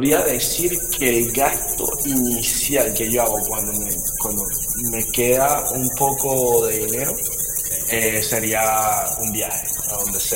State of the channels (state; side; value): identical; both; correlation 1.00